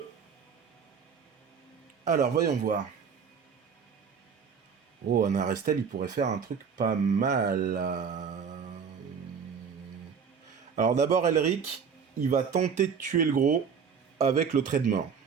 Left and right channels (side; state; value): left; quieter; 6.6 dB